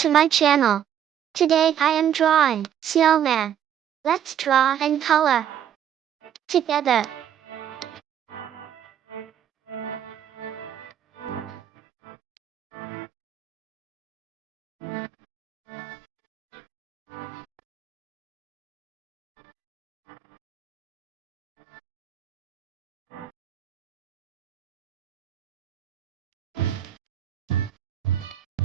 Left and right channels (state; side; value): quieter; left; 9.9 dB